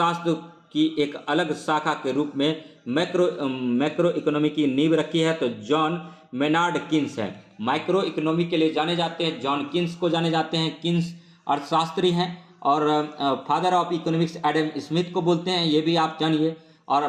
की एक अलग शाखा के रूप में मैक्रो इकोनॉमी की नींव रखी है? तो जॉन मेनार्ड किन्स है। माइक्रो इकोनॉमी के लिए जाने जाते हैं जॉन किन्स को जाने जाते हैं। किन्स अर्थशास्त्री हैं, और father of economics Adam Smith को बोलते हैं, ये भी आप जानिए। और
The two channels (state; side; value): identical; both; correlation 1.00